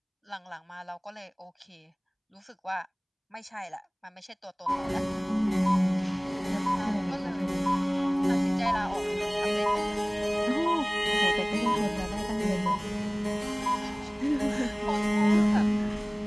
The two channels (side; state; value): both; identical; correlation 1.00